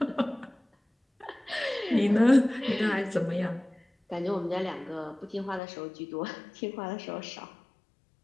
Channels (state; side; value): drops out; right; at 5.6 s